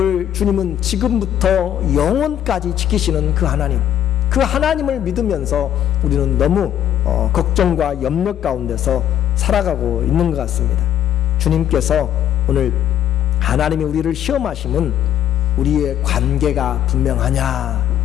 주님은 지금부터 영원까지 지키시는 그 하나님, 그 하나님을 믿으면서 우리는 너무 걱정과 염려 가운데서 살아가고 있는 것 같습니다. 주님께서 오늘 하나님이 우리를 시험하심은 우리의 관계가 분명하냐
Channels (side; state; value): right; quieter; 10.7 dB